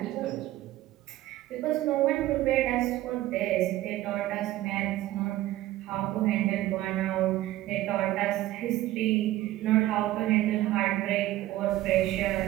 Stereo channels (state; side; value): quieter; left; 15.3 dB